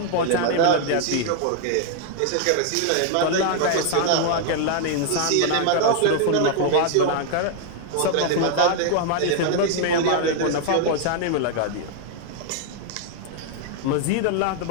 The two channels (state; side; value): different; both; correlation 0.00